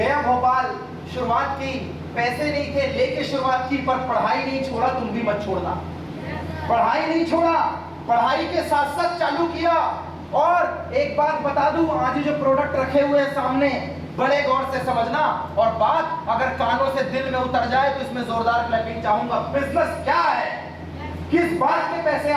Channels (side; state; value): both; identical; correlation 1.00